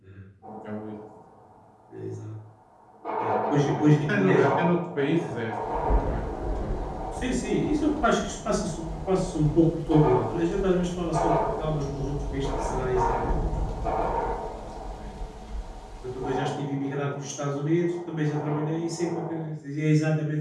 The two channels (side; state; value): both; identical; correlation 1.00